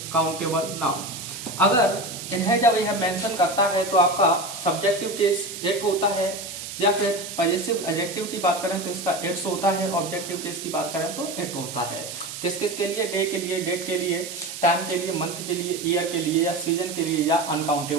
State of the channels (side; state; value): right; noise; hiss, 9 dB below the sound